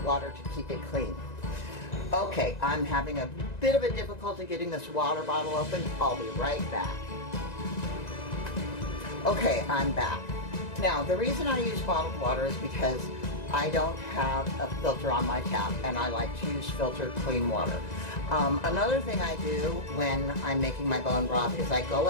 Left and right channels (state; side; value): late; right; 1.9 ms